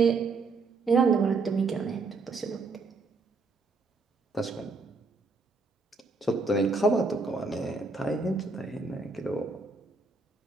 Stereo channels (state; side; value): quieter; left; 4.0 dB